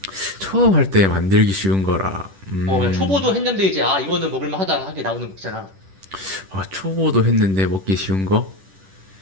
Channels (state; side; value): late; left; 10 ms